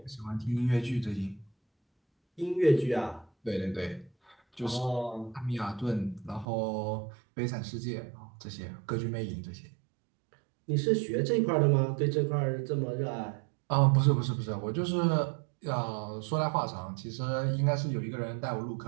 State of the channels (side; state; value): left; drops out; at 6.5 s